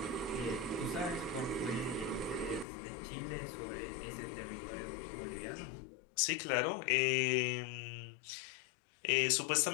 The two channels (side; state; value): right; drops out; at 2.7 s